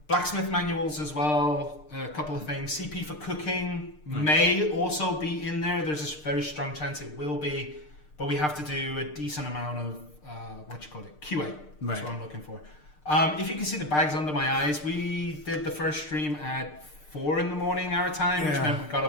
Blacksmith Manuals as well, a couple of things. CP for cooking may also be in there. There's a very strong chance it will be, but we have to do a decent amount of, QA. That's what I'm looking for. If you can see the bags under my eyes, we did the first stream at 4 in the morning our time, which meant we got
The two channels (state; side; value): late; right; 6.6 ms